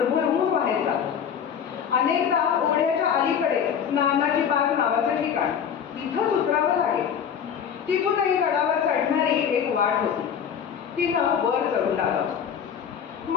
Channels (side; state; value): right; quieter; 7.9 dB